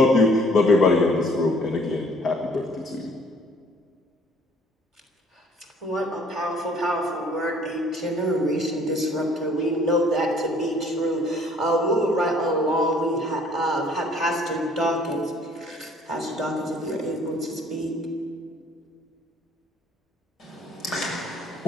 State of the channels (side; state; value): both; normal; correlation 0.58